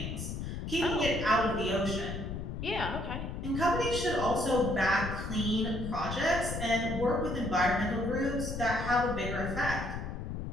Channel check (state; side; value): noise; left; rumble, 5 dB below the sound